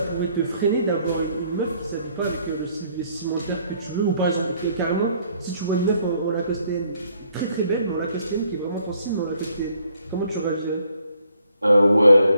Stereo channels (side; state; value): both; inverted; correlation -0.67